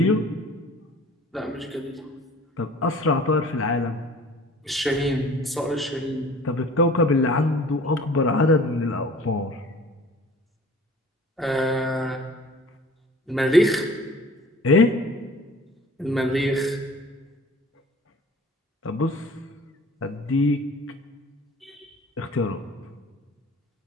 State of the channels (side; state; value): both; normal; correlation 0.47